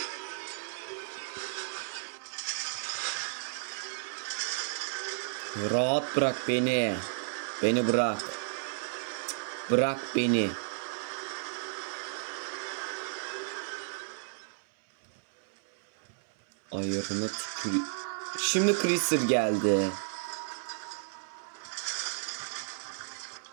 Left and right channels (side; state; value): left; silent; 56 dB below the other